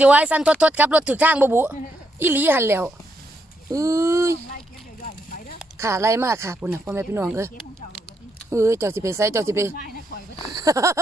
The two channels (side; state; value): both; normal; correlation 0.79